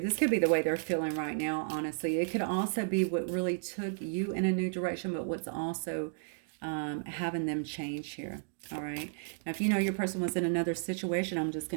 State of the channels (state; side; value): silent; left; digital silence